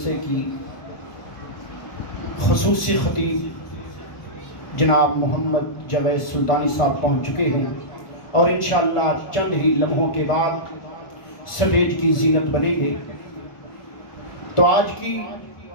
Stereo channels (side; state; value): right; late; 1.4 ms